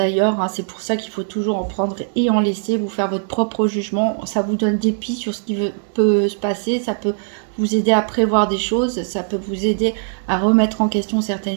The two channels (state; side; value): silent; left; digital silence